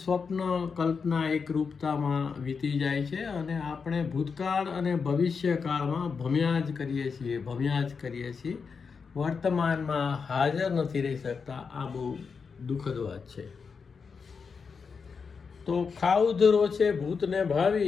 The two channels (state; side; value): quieter; right; 5.5 dB